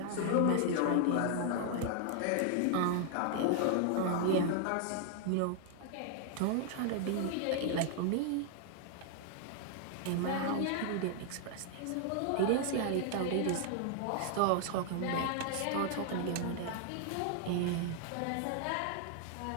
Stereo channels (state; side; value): different; both; correlation 0.00